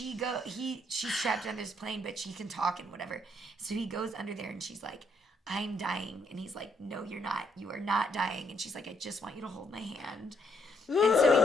trapped under this plane, but she can talk and whatever. So he goes under there, and she's like, I'm dying. And he's like, no, you're not. You are not dying. And she's like, I just want you to hold my hand. And so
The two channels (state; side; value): normal; both; correlation 0.73